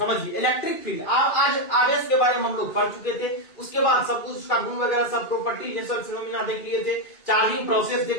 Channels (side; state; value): right; late; 2.3 ms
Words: इलेक्ट्रिक फील्ड आज आवेश के बारे में हम लोग पढ़ चुके थे, उसके बाद सब कुछ उसका गुण वगैरह सब प्रॉपर्टी नेचुरल फिनोमेना देख लिए थे, चार्जिंग प्रोसेस देख